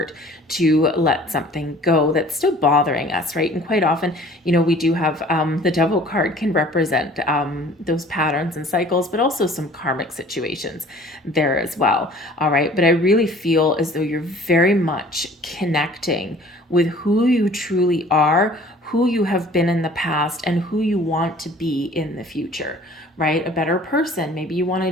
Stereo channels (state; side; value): normal; both; correlation 0.50